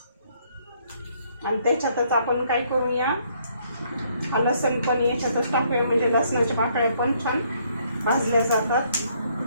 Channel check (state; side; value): inverted; both; correlation -0.68